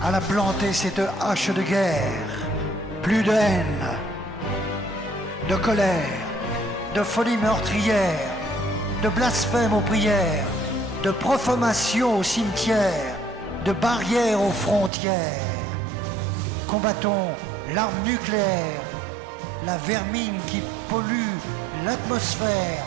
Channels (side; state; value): left; drops out; at 14.9 s